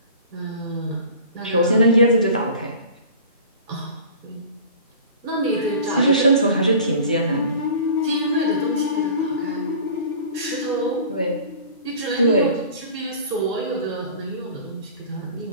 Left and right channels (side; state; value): both; inverted; correlation -0.42